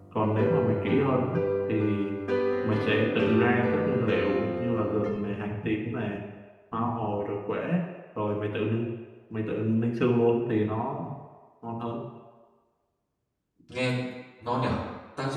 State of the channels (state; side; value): identical; both; correlation 1.00